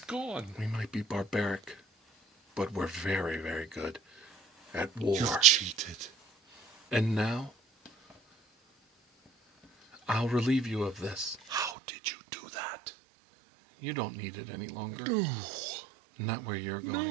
gone? we might be barbaric, but we're very, very good at war. You've cheated. And now, I'll relieve you of this. How did you do that? You don't need it any longer. No. Not where you're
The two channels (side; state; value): left; drops out; at 11.8 s